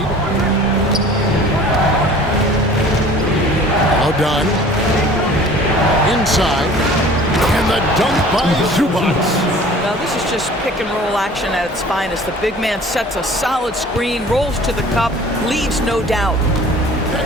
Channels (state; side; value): normal; both; correlation 0.47